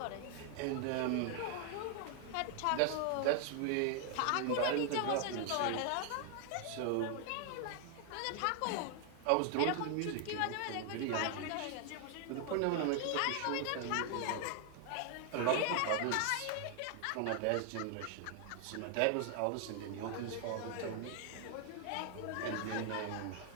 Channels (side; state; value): both; different; correlation 0.00